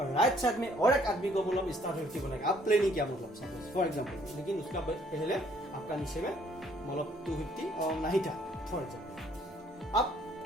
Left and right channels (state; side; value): normal; both; correlation 0.63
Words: राइट साइड में और एक आदमी को मतलब स्टार 250 बनाएगा। आप प्लानिंग किया मतलब सपोज फॉर एग्जांपल, लेकिन उसका पहले आपका नीचे में मतलब 250 और नहीं था फॉर एग्जांपल। अब